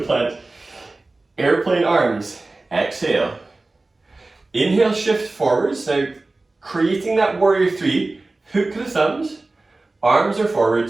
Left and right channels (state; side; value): quieter; left; 3.2 dB